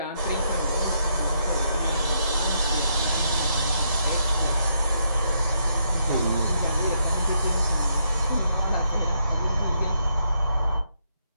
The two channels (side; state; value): both; inverted; correlation -0.77